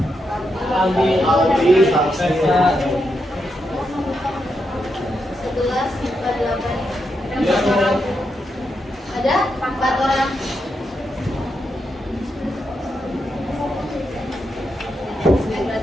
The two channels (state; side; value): normal; both; correlation 0.84